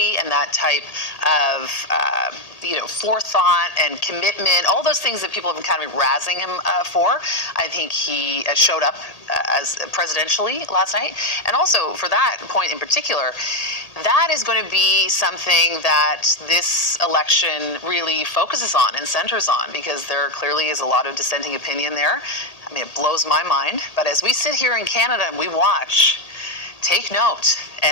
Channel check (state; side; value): late; right; 1.8 ms